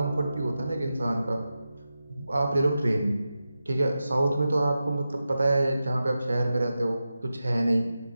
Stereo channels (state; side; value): inverted; both; correlation -0.92